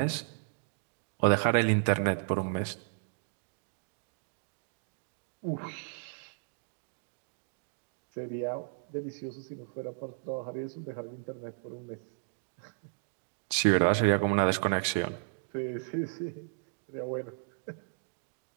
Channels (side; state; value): left; silent; digital silence